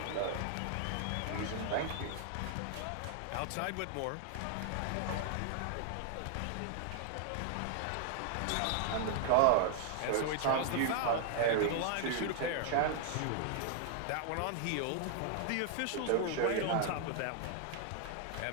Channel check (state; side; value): different; both; correlation 0.00